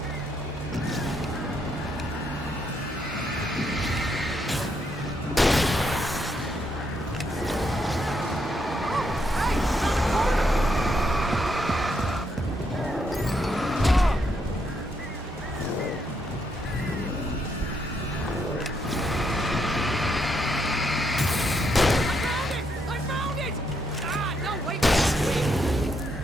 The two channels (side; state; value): both; normal; correlation 0.77